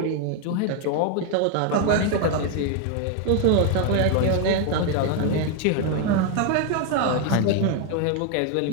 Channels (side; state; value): both; different; correlation 0.01